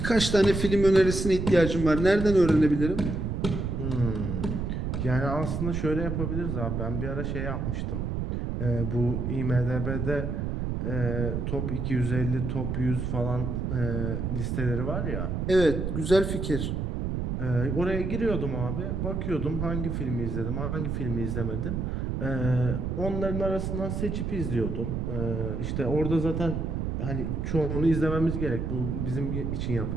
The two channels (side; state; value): right; noise; rumble, 2 dB below the sound